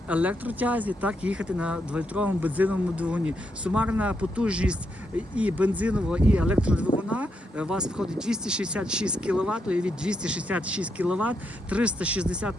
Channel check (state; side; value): normal; both; correlation 0.80